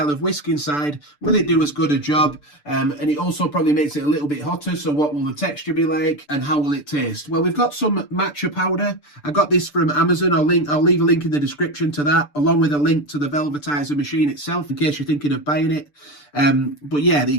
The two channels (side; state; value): right; late; 6.8 ms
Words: of whisk inside, will it do as good a job? And it also probably makes it a little bit hotter, so what will the texture be like and how will it taste? Well, we've got some matcha powder. I got this from Amazon. I'll leave a link in the description to that, along with a link to the Velvetiser machine itself in case you're thinking of buying it. But yeah,